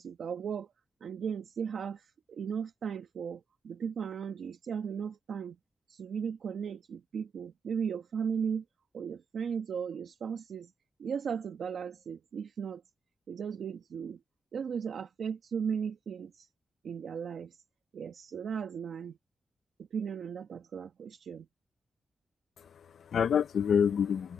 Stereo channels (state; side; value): normal; both; correlation 0.74